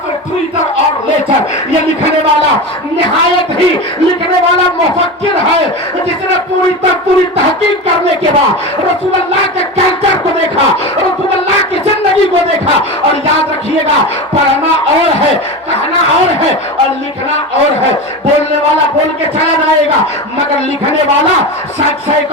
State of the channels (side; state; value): both; normal; correlation 0.24